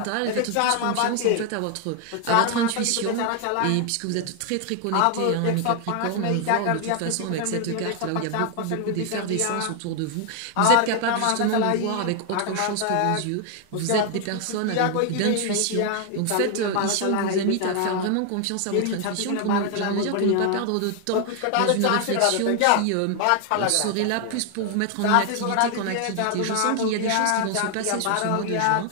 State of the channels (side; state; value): both; different; correlation 0.00